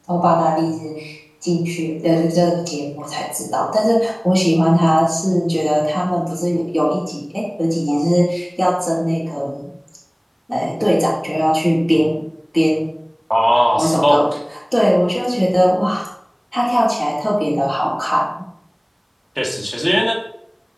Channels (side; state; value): both; identical; correlation 1.00